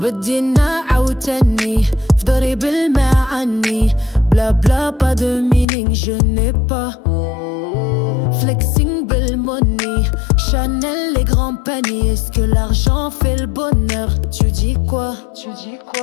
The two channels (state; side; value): drops out; right; at 5.7 s